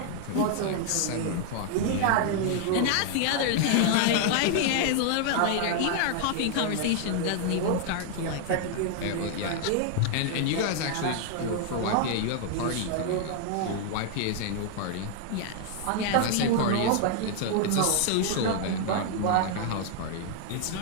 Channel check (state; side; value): different; both; correlation 0.00